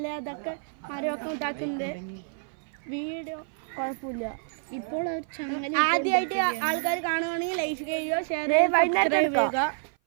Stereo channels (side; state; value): left; silent; 56 dB below the other